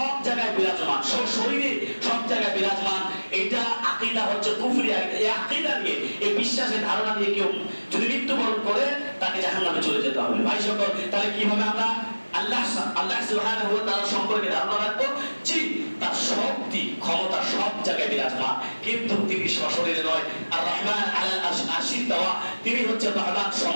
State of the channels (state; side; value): inverted; both; correlation -1.00